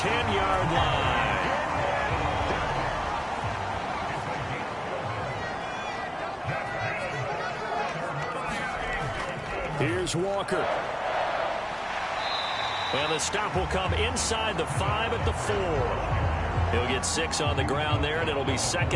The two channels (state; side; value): identical; both; correlation 1.00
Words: line. Here's Walker. And the stop will come inside the 5 at the 4. He'll get 6 on the ground there, and it'll be